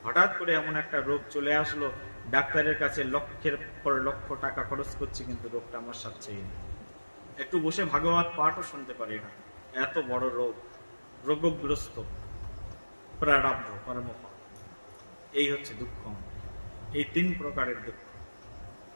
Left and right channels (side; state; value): both; inverted; correlation -1.00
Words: হঠাৎ করে এমন একটা রোগ চলে আসলো। ডাক্তারের কাছে লক্ষের পর লক্ষ টাকা খরচ করছি, কিন্তু রোগটা আমার সাথেই নেই। একটু বসে ভাগবত পাঠও শুনতে পারি না, এত বড় রোগ, রোগগ্রস্ত, প্রারব্ধ কর্মফল। এই হচ্ছে দুঃখ। এই 3 প্রকারের দুঃখ।